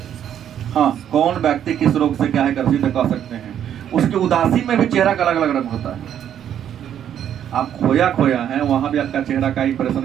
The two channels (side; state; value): left; quieter; 9.8 dB